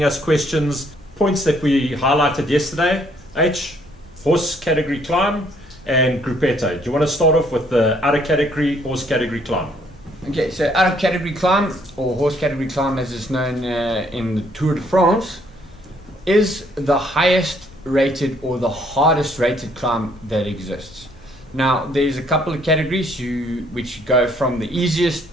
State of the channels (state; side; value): normal; both; correlation 0.66